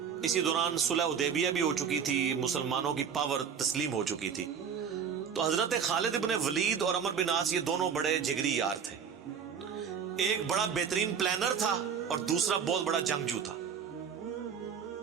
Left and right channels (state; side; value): quieter; left; 7.1 dB